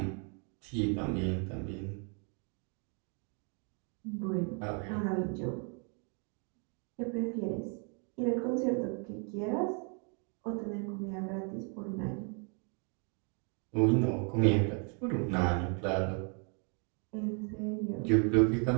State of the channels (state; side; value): quieter; left; 38.3 dB